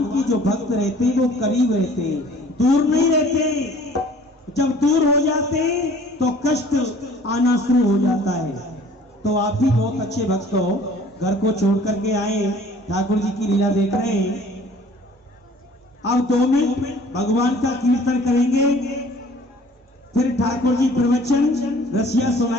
की जो भक्त रहते हैं वो करीब रहते हैं, दूर नहीं रहते। जब दूर हो जाते हैं तो कष्ट आना शुरू हो जाता है। तो आप भी बहुत अच्छे भक्त हो, घर को छोड़ करके आए, ठाकुर जी की लीला देख रहे हैं। अब 2 मिनट भगवान का कीर्तन करेंगे, फिर ठाकुर जी प्रवचन रसिया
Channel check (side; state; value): both; normal; correlation 0.52